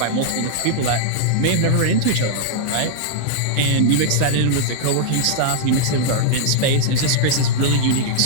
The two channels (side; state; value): both; different; correlation -0.02